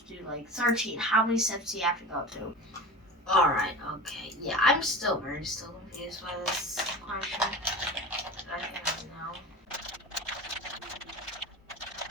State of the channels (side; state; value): both; normal; correlation 0.32